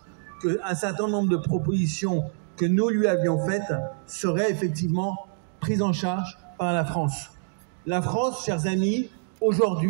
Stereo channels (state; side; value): silent; left; digital silence